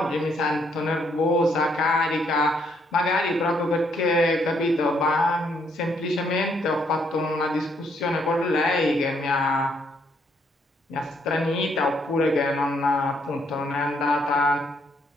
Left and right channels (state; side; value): normal; both; correlation 0.71